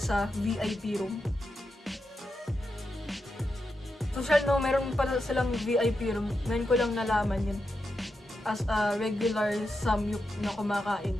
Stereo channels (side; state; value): both; normal; correlation 0.87